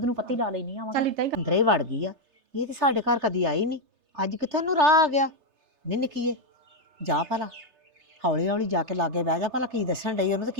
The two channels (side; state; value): left; late; 3.3 ms